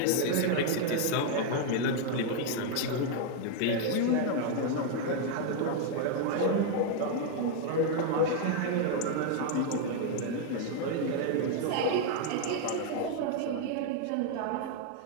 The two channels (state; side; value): different; both; correlation 0.00